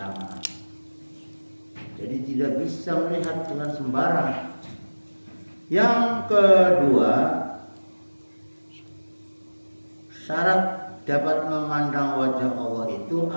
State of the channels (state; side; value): inverted; both; correlation -1.00